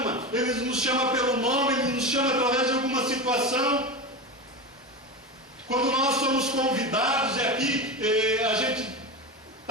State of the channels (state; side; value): normal; both; correlation 0.22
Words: pelo nome, Ele nos chama através de alguma situação. Quando nós somos convidados, e aqui a gente